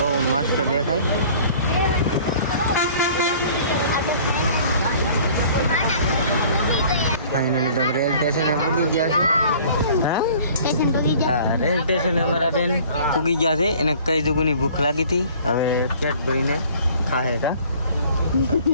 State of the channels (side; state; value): both; inverted; correlation -0.51